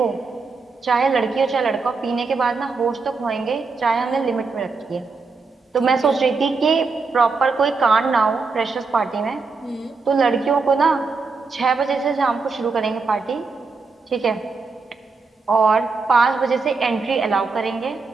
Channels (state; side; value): quieter; left; 4.4 dB